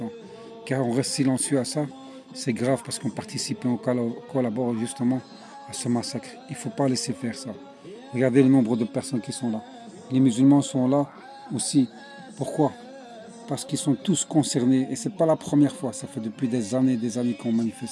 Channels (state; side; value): identical; both; correlation 1.00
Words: Car on reste silencieux à ça. C'est grave parce qu'on participe et on collabore justement à ce massacre. Il ne faut pas laisser faire ça. Regardez le nombre de personnes qui sont là. Les musulmans sont là aussi. Pourquoi? Parce qu'ils sont tous concernés. Et ce n'est pas la première fois. Ça fait depuis des années qu'on